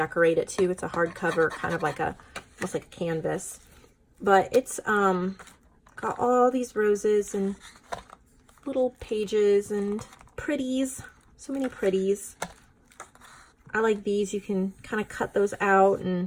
it too. It's a hardcover, kind of like almost like a canvas. But it's got all these roses and little pages and pretties. So many pretties. I like these. You can kind of cut those out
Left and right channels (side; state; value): both; identical; correlation 1.00